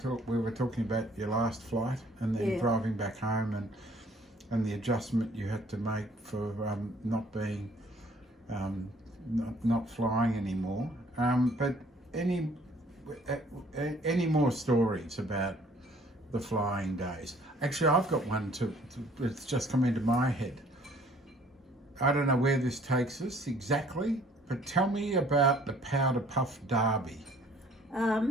talking about your last flight and then driving back home and the adjustment you had to make for not being not flying anymore. But any more stories about the flying days? Actually, I've got one too. It's just come into my head. I don't know where this takes us exactly, but tell me about the Powder Puff Derby.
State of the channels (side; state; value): both; normal; correlation 0.58